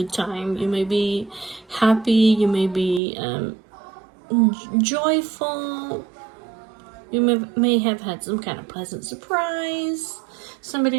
time. You may be happy. You may be joyful. You may have had some kind of pleasant surprise.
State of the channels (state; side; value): drops out; left; at 3.0 s